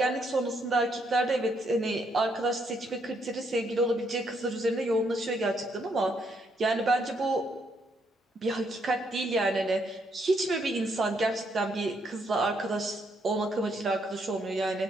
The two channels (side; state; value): both; normal; correlation 0.74